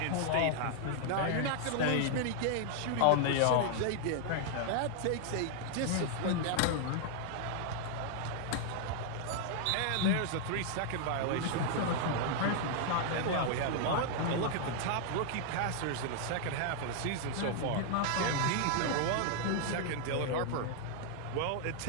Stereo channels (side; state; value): both; different; correlation 0.00